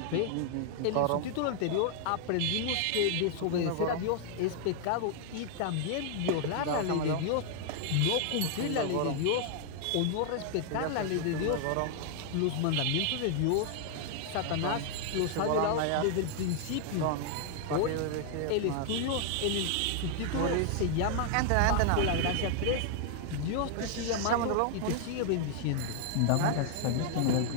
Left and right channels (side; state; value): both; different; correlation 0.00